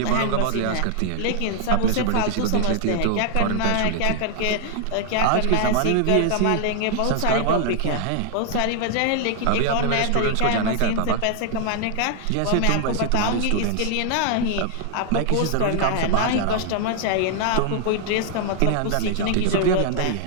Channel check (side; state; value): both; different; correlation 0.00